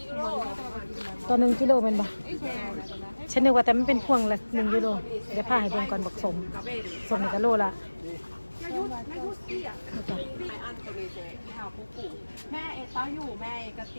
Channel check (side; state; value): both; inverted; correlation -1.00